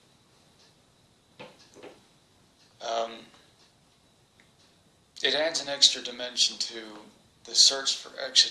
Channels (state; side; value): identical; both; correlation 1.00